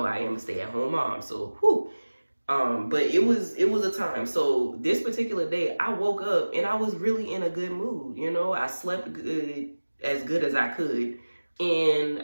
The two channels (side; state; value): both; inverted; correlation -1.00